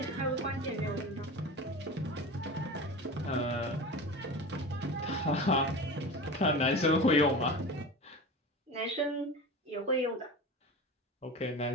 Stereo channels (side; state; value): both; normal; correlation 0.31